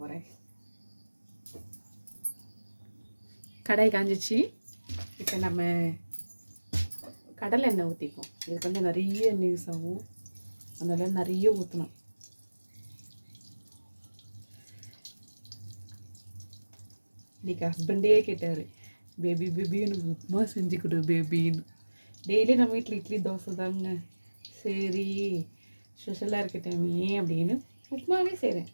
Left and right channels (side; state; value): both; inverted; correlation -1.00